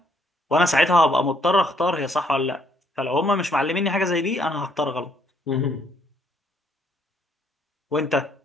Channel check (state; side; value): normal; both; correlation 0.68